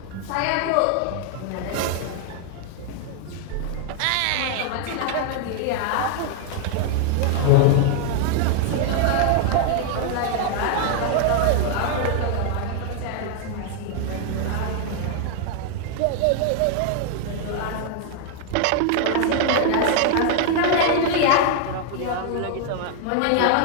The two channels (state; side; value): different; both; correlation 0.00